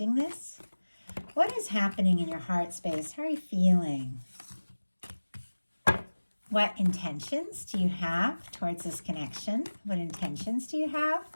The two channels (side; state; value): both; inverted; correlation -1.00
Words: this? What is happening in your heart space? How are you feeling? What intentions do you have towards this connection? What intentions do you have?